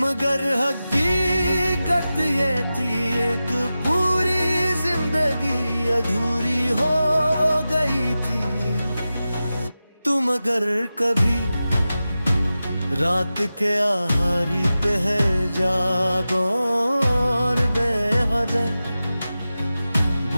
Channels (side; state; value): both; inverted; correlation -0.94